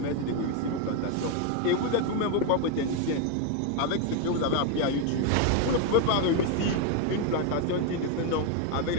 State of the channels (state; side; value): different; both; correlation 0.01